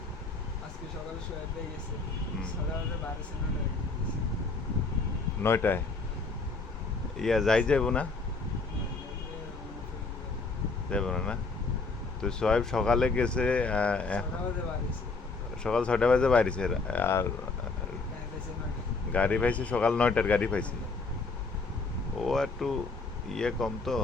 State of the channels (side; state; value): right; quieter; 3.9 dB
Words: আজকে সকালে শোয়া পেয়ে গেছে হুম। সকালে 12:09 নয়টায় যাই যাইব না? যাইব না না? তো সোহেব সকালে গেছে, সকাল 6টা বাজে বাইরেছে, আর গাড়ি পাইছে সকাল 9টার গাড়ি পাইছে। ও একটু ইয়ে কম তো,